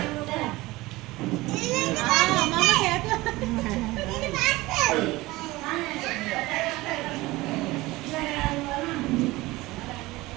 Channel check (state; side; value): quieter; left; 19.9 dB